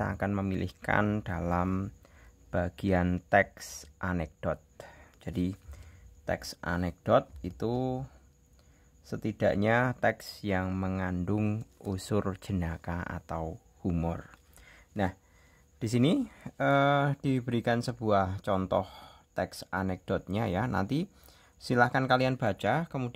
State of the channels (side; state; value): both; identical; correlation 1.00